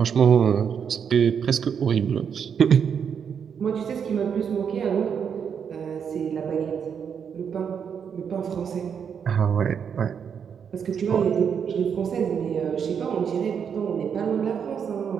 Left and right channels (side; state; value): left; quieter; 7.3 dB